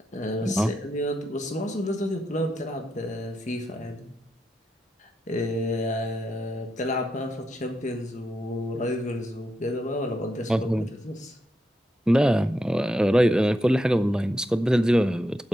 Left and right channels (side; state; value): both; normal; correlation 0.84